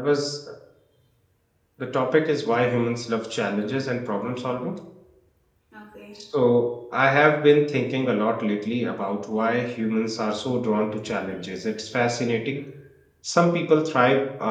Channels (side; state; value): both; identical; correlation 1.00